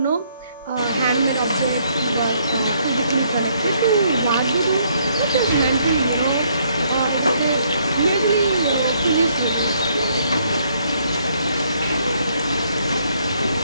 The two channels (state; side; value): inverted; both; correlation -0.69